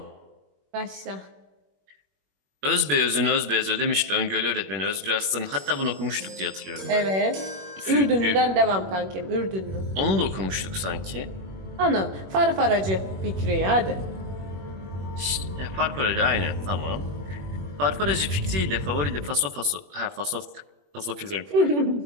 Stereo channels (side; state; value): left; late; 21 ms